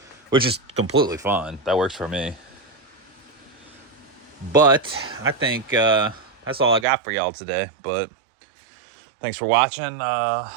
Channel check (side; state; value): left; drops out; at 6.9 s